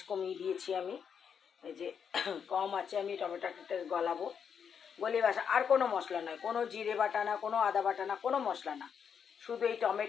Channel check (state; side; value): quieter; right; 7.2 dB